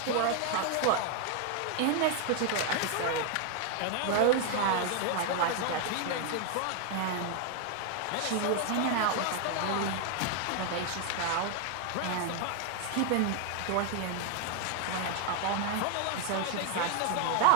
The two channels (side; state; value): both; different; correlation 0.00